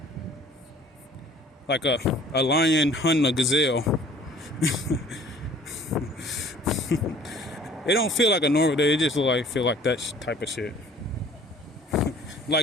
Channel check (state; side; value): normal; both; correlation 0.52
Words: a lion hunting a gazelle. It don't feel like a normal day. It just feel like that type of shit.